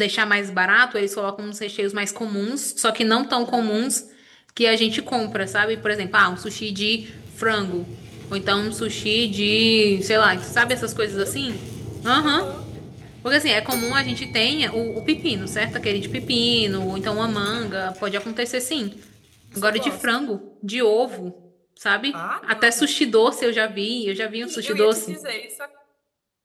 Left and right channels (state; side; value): identical; both; correlation 1.00